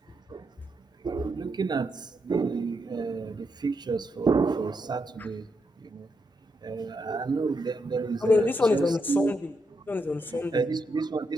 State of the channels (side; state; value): both; normal; correlation 0.81